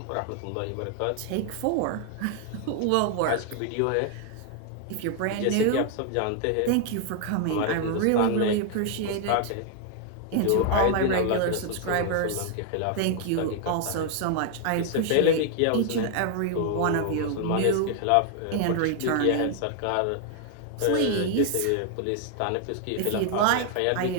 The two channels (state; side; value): different; both; correlation 0.00